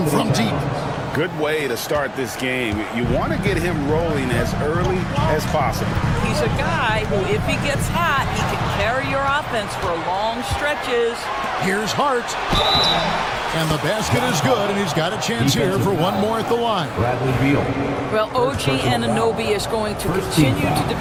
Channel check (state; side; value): identical; both; correlation 1.00